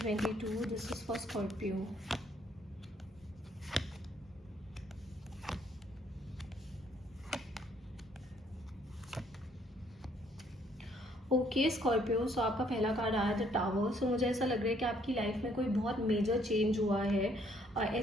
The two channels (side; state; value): both; normal; correlation 0.66